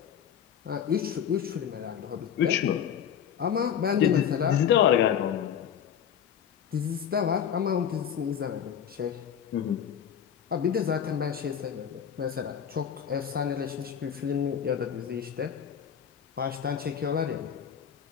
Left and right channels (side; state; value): right; quieter; 8.6 dB